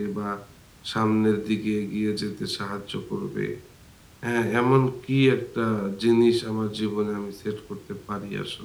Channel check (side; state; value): both; identical; correlation 1.00